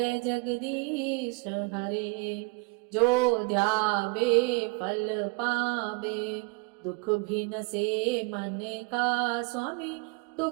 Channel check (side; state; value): left; quieter; 29.7 dB